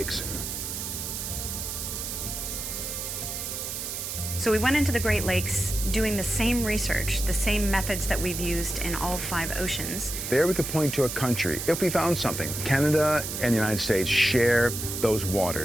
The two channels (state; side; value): noise; right; hiss, 5 dB below the sound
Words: So we went into the Great Lakes doing the same research, the same methods that we've used in all 5 oceans. There we could point to a country if we found something. Canada and the United States share those